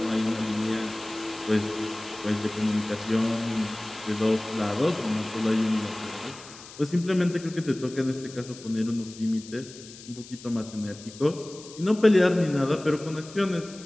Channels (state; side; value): noise; left; hiss, 17 dB below the sound